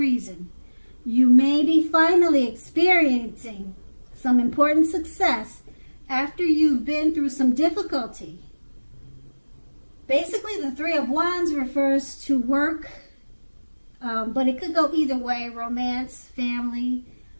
You may be finally experiencing some important success after you've been through some difficulty. Basically, the Three of Wands refers to work, but it could go either way, romance, family.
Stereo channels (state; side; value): inverted; both; correlation -1.00